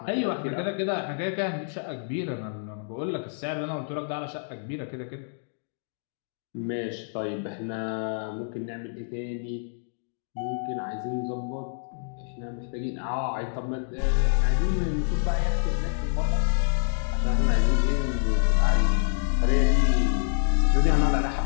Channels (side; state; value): right; silent; digital silence